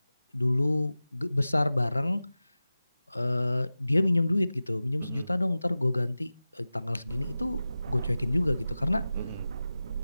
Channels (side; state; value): both; inverted; correlation -0.96